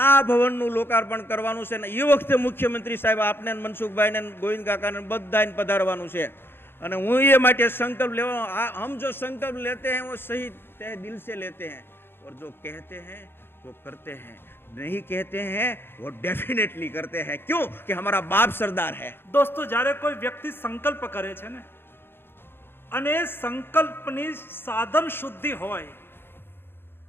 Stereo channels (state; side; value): late; right; 0.11 ms